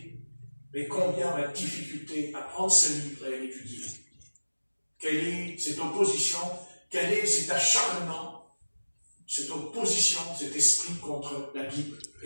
Mais combien on a de difficulté à prendre ce livre et à l'étudier. Quelle est cette opposition? Quel est cet acharnement, cette opposition, cet esprit contre la Bible,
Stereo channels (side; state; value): both; inverted; correlation -1.00